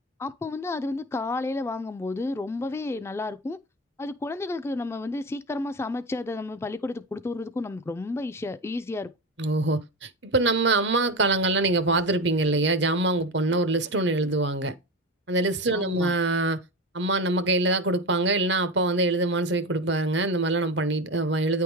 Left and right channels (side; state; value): both; normal; correlation 0.22